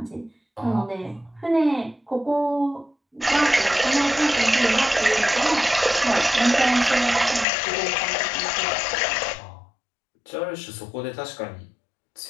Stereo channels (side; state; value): right; drops out; at 7.5 s